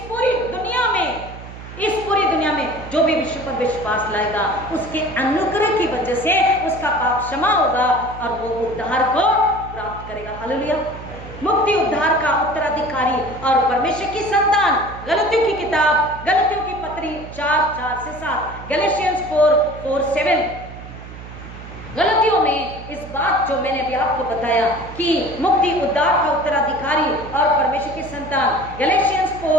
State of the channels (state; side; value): noise; right; hum, 14 dB below the sound